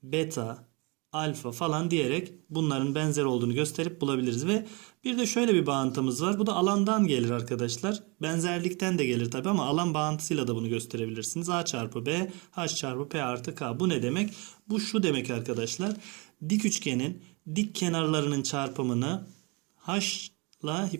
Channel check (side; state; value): left; quieter; 29.0 dB